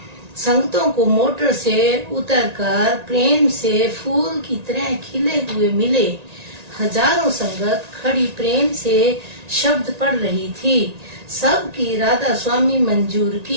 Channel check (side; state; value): left; late; 1.9 ms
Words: संगतों को मोटर से उतरकर प्रेम से फूल की तरह खिले हुए मिले। हजारों संगत खड़ी प्रेम से शब्द पढ़ रही थी। सबकी राधा स्वामी मंजूर